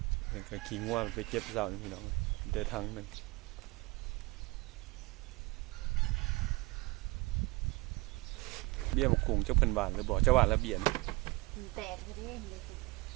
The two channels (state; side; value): quieter; left; 24.2 dB